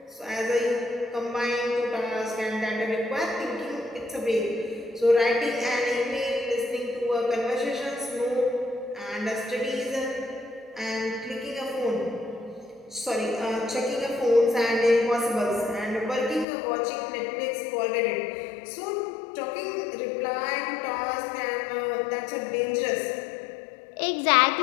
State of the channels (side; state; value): right; drops out; at 16.4 s